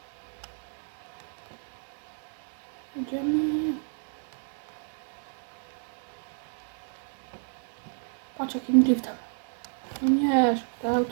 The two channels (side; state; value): left; silent; 57 dB below the other